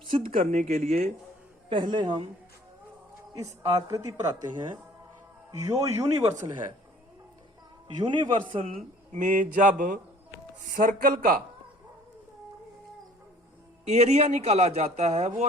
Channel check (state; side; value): normal; both; correlation 0.53